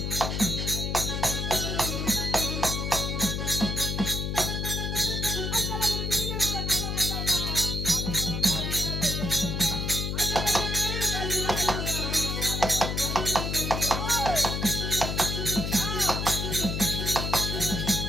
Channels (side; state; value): left; noise; hum, 2 dB below the sound